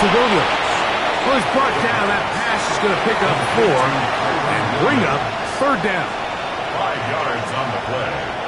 Williams. Well, he's brought down. That pass is going to pick up 4 and bring up third down. 5 yards on the play.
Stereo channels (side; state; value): both; identical; correlation 1.00